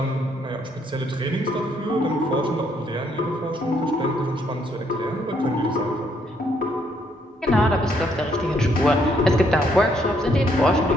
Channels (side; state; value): both; normal; correlation 0.71